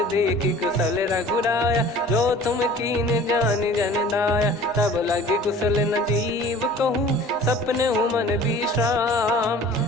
देखी कुशल रघुराया, जो तुम कीन जान जन दाया। तब लगे कुशल न जीव कहूँ, सपने हूँ मन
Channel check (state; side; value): normal; both; correlation 0.46